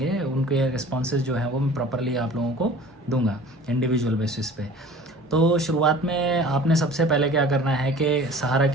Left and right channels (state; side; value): normal; both; correlation 0.44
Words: उनके रिस्पॉन्सेज जो हैं वो मैं प्रॉपरली आप लोगों को दूंगा इंडिविजुअल बेसिस पे। तो शुरुआत में आपने सबसे पहले क्या करना है कि सहारा